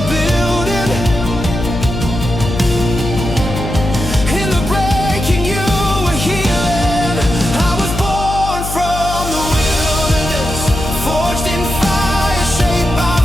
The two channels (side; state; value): left; noise; hum, 6 dB below the sound